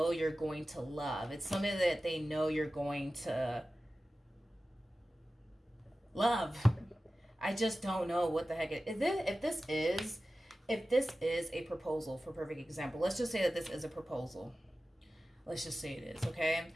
you're going to love. It's something that they know you're going to love. I just don't know what the heck it is. If this is a proposal, for perfect example, let's just say that this is a proposal. Let's just say it is, okay?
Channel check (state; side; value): normal; both; correlation 0.95